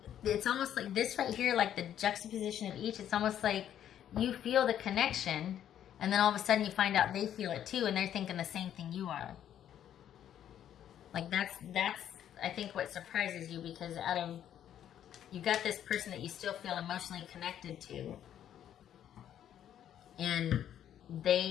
It's almost like this right here, like the juxtaposition of each. It's almost like you feel the connection, and then all of a sudden you find out they feel it too, and they're thinking the same thing you are. Like that's I think what surprises you, because you got this person that you still feel emotionally connected to, and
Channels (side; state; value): right; quieter; 10.4 dB